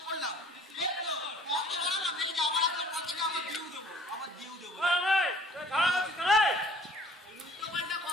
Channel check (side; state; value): both; normal; correlation 0.53